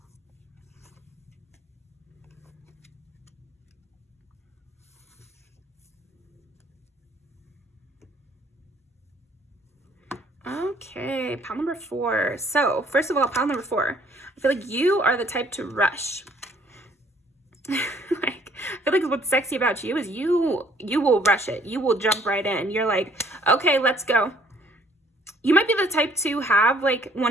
Okay, pile number 4. So first of all, pile number 4, I feel like you are the type to rush. Like, I feel like what's sexy about you is you will rush it. You will jump right in. You're like, okay, let's go. You might be the type to have like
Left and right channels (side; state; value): both; normal; correlation 0.61